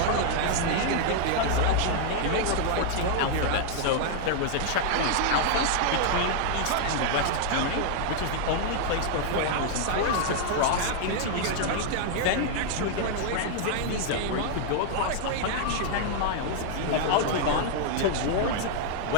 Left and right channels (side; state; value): both; different; correlation 0.00